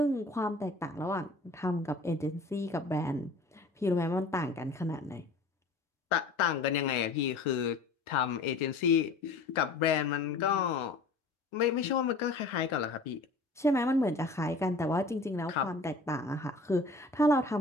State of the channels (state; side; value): quieter; right; 3.5 dB